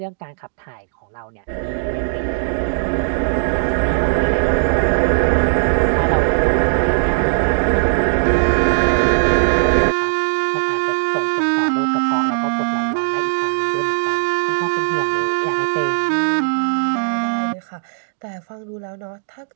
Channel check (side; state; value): left; silent; digital silence